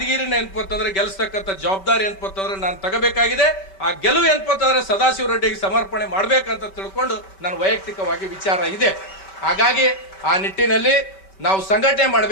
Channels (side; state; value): right; late; 5.2 ms